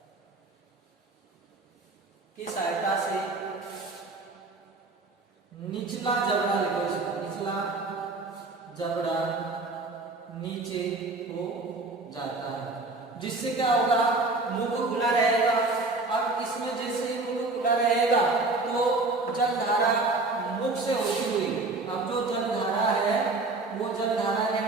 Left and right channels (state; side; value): quieter; left; 3.4 dB